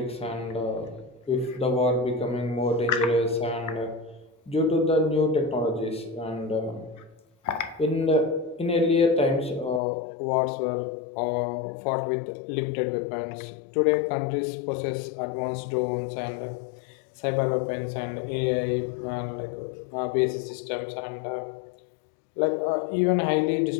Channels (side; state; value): right; drops out; at 9.8 s